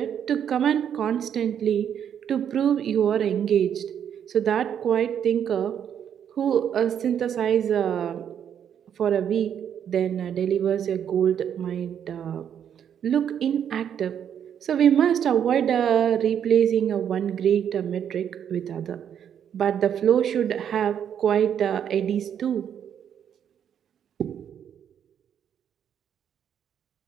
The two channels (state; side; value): quieter; left; 8.8 dB